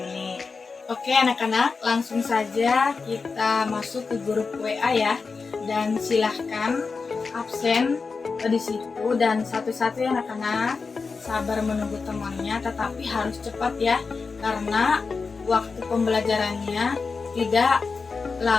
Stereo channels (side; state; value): right; quieter; 4.6 dB